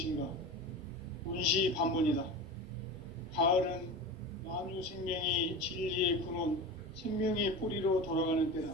원시반복이다. 가을은 만유 생명이 진리의 근원, 생명의 뿌리로 돌아가는 때다.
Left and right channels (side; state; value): both; normal; correlation 0.29